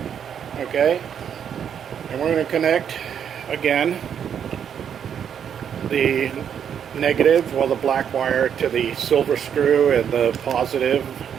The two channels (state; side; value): quieter; left; 8.3 dB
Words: Okay, and we're going to connect again the negative, well, the black wire to the silver screw and the positive